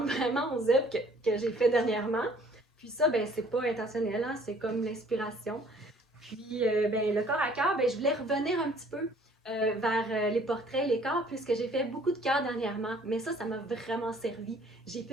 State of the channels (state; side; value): normal; both; correlation 0.57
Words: vraiment aux œuvres que j'ai fait dernièrement. Puis ça, ben c'est pas intentionnel, hein, c'est comme l'inspiration. Puis ben, le corps à cœur, ben, je voulais revenir un petit peu vers les portraits, les corps, puisque j'ai fait beaucoup de cœurs dernièrement. Mais ça m'a vraiment servi. J'ai